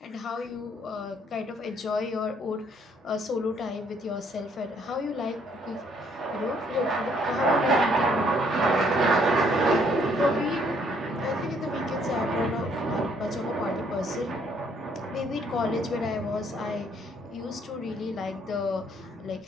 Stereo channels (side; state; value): both; normal; correlation 0.66